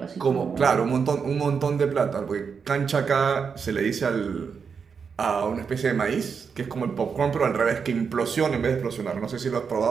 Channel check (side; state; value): left; quieter; 6.1 dB